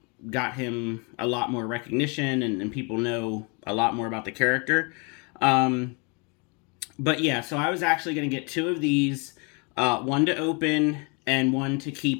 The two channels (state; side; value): quieter; right; 32.8 dB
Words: him a lot more recognition and people know a lot more about the character. But yeah, so I was actually going to get two of these, one to open and one to